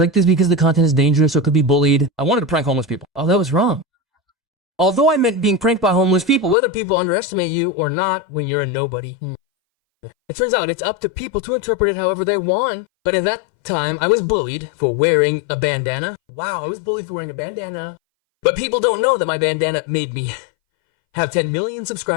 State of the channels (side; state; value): right; drops out; at 6.6 s